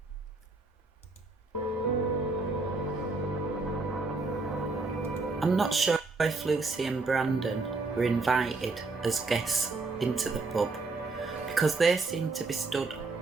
I'm not sure if Lucy and Brandon were invited as guests into the pub, because they seemed to be stood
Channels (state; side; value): quieter; left; 3.7 dB